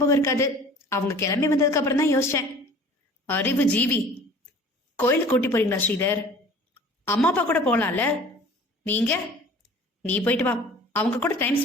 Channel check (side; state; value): both; normal; correlation 0.46